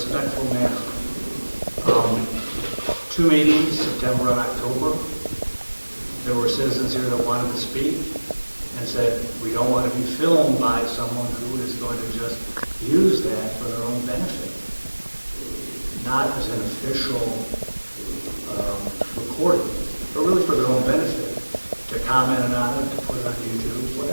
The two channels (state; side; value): inverted; both; correlation -1.00